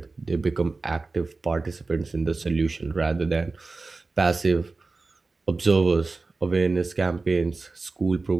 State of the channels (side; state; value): left; quieter; 3.7 dB